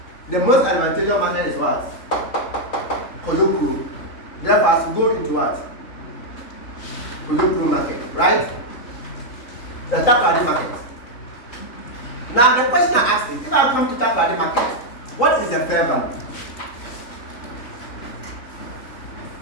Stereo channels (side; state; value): right; late; 3.9 ms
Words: the most advantageous market is what? Kojoko. Therefore, as you go into what? Kojoko market, right? The Takrady market. Now the question I asked is, if I come to talk about the market, what is the fair value?